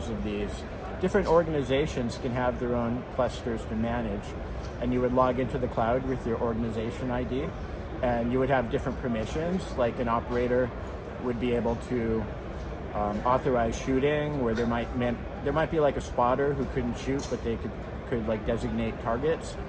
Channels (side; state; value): both; identical; correlation 1.00